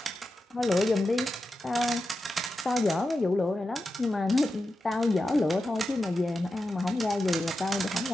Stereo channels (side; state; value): both; normal; correlation 0.90